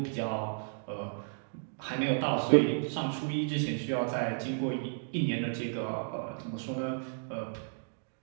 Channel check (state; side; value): silent; left; digital silence